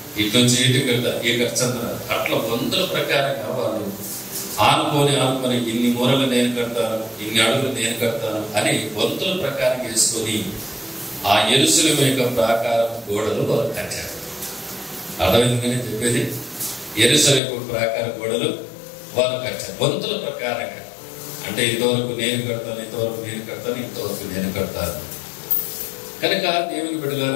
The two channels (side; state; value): right; drops out; at 17.4 s